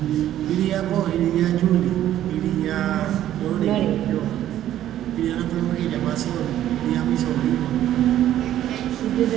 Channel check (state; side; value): quieter; left; 12.2 dB